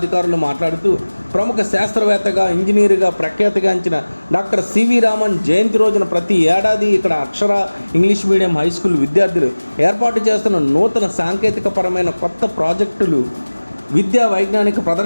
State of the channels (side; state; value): both; inverted; correlation -1.00